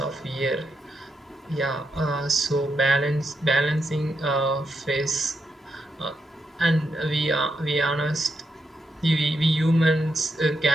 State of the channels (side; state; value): both; normal; correlation 0.82